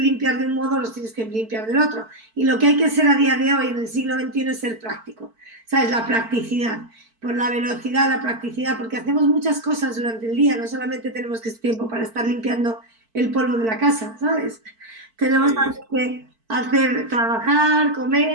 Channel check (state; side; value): late; left; 4.5 ms